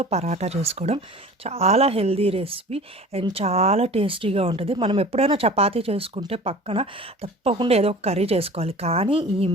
పరాటా చేసుకోవడం చాలా హెల్దీ రెసిపీ అండ్ చాలా టేస్టీగా ఉంటుంది. మనం ఎప్పుడైనా చపాతీ చేసుకుంటే పక్కన తప్పకుండా ఏదో ఒక కర్రీ చేసుకోవాలి. కానీ ఈ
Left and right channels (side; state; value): both; normal; correlation 0.41